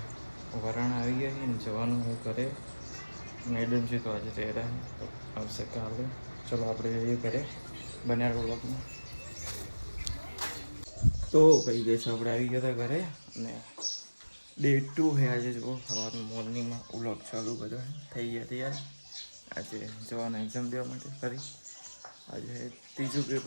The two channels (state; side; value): inverted; both; correlation -1.00